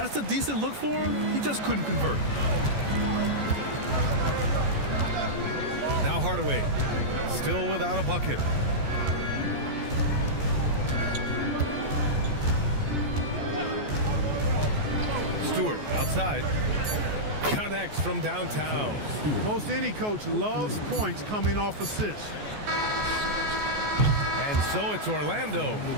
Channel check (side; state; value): left; late; 14 ms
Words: a decent look for him. He just couldn't convert. Now Hardaway, still without a bucket. Stewart outside. Connects from downtown. Most any coach loves points coming off assists. And so it's Orlando,